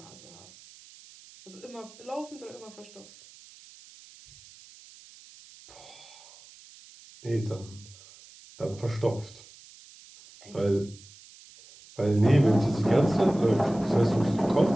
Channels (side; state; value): right; noise; hiss, 22 dB below the sound